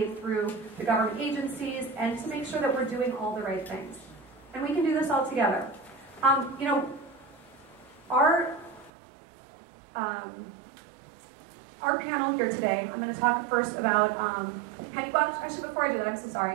through the government agencies and to make sure that we're doing all the right things. And we can do this all together. Our panel here today, I'm going to talk first about, actually before I do that, I'm so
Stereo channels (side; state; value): left; drops out; at 8.9 s